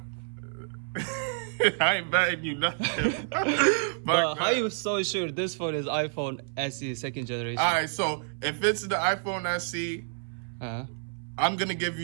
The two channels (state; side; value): silent; left; 59 dB below the other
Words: I ain't betting you nothing. But how you so sure this phone is iPhone SE second generation? Alright, so if it's the iPhone SE, I'm gonna give